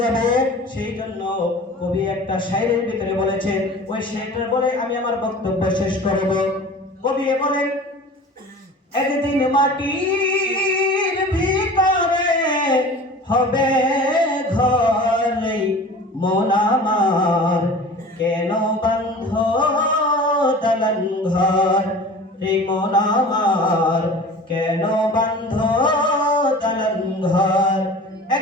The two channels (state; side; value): normal; both; correlation 0.40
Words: যাবে। সেই জন্য কবি একটা শায়রের ভিতরে বলেছেন, ওই শায়রটা বলে আমি আমার বক্তব্য শেষ করব। কবি বলেন, একদিন মাটির ভিতরে হবে ঘরে মন আমার, কেন বান্ধ দালান ঘর রে মন আমার, কেন বান্ধ দালান ঘর।